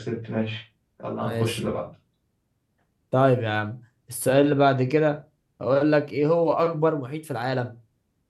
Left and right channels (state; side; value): identical; both; correlation 1.00